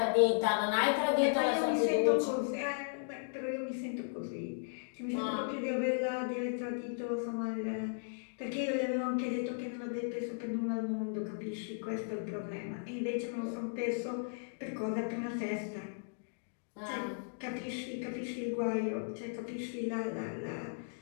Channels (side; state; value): right; silent; digital silence